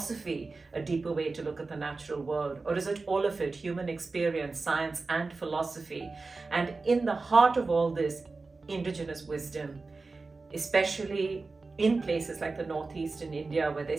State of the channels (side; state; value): left; quieter; 3.8 dB